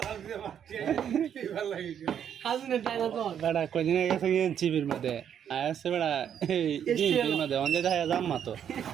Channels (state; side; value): quieter; left; 8.9 dB